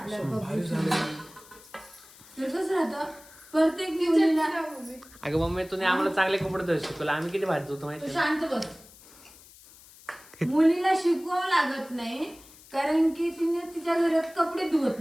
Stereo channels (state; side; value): noise; left; hiss, 22 dB below the sound